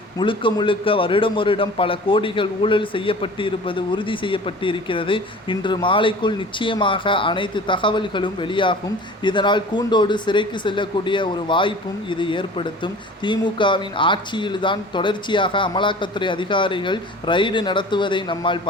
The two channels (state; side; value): normal; both; correlation 0.42